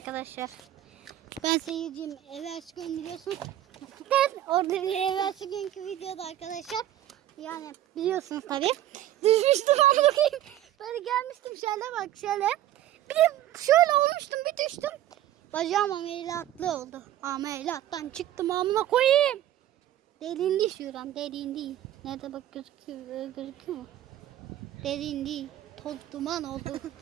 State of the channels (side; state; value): left; quieter; 12.8 dB